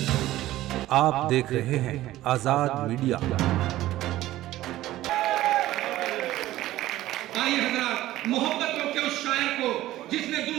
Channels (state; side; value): quieter; left; 15.3 dB